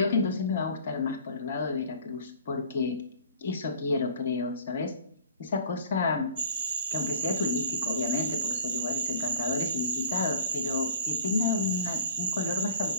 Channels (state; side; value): inverted; both; correlation -0.46